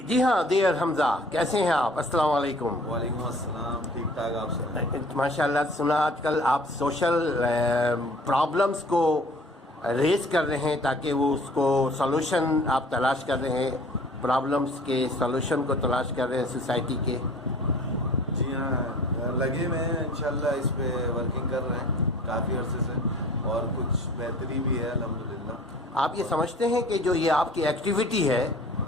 جی ہاں دیر حمزہ، کیسے ہیں آپ؟ السلام علیکم۔ وعلیکم السلام، ٹھیک ٹھاک آپ سے؟ ماشاء اللہ، سنا آج کل آپ سوشل پرابلمس کو ریز کر رہے ہیں تاکہ وہ اس کو سولوشن آپ تلاش کر رہے ہیں، پرابلمس کے سولوشن کو تلاش کر رہے ہیں سوسائٹی کے۔ جی ہاں، لگے ہوئے ہیں انشاءاللہ، اس پہ ورکنگ کر رہے ہیں کافی عرصے سے، اور کچھ بہتری بھی ہے الحمدللہ۔ آپ یہ سمجھتے ہیں کہ جو یہ آپ کی ایکٹیویٹی ہے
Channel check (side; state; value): both; normal; correlation 0.49